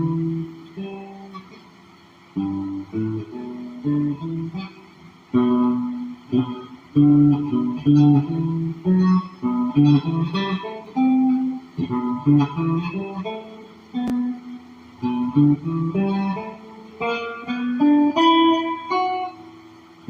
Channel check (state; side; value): identical; both; correlation 1.00